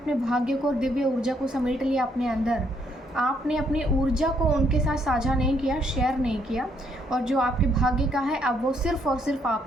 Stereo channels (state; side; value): normal; both; correlation 0.71